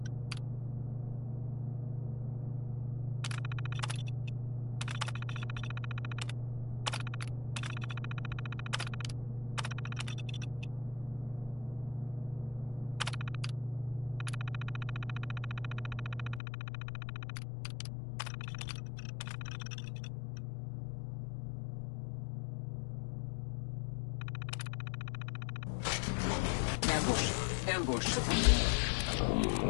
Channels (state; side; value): drops out; right; at 16.4 s